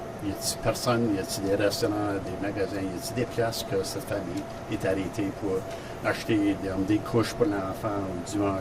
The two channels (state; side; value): identical; both; correlation 1.00